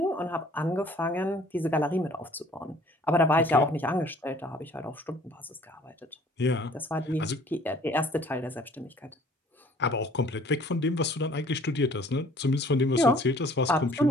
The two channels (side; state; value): both; normal; correlation 0.54